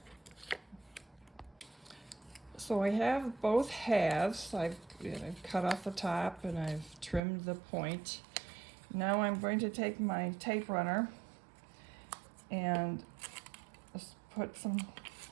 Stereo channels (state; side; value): drops out; left; at 7.2 s